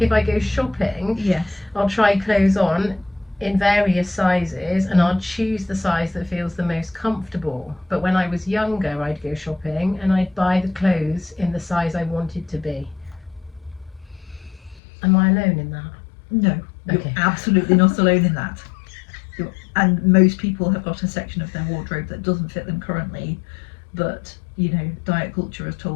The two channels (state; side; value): drops out; right; at 14.8 s